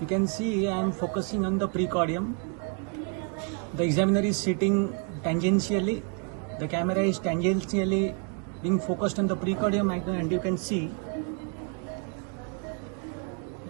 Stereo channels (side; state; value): left; quieter; 37.7 dB